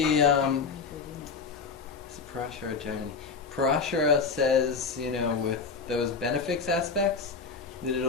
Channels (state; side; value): quieter; right; 4.9 dB